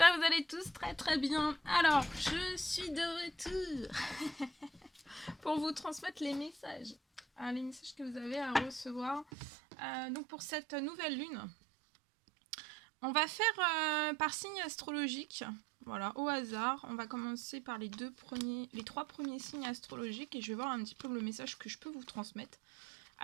que vous allez tous très très bien. Alors, je suis de retour pour vous transmettre les messages que vous avez à recevoir. Donc pour cette nouvelle lune, on va faire par signe astrologique, voilà, au hasard. On va commencer par les trois premiers signes astrologiques et je vais voir un petit peu le message que je peux vous transmettre.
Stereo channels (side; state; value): left; drops out; at 9.2 s